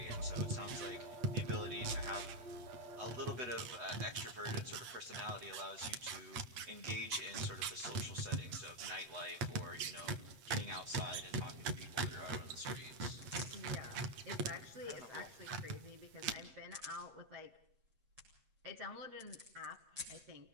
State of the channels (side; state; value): left; late; 8.1 ms